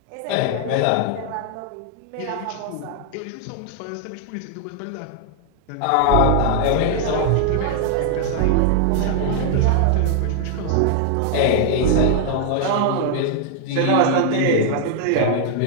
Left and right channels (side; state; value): both; different; correlation 0.00